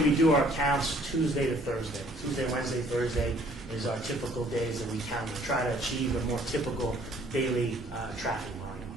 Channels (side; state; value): both; normal; correlation 0.59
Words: do our counts Tuesday to Thursday. Tuesday, Wednesday, Thursday is our typical days that we count to try to achieve a more typical daily traffic volume.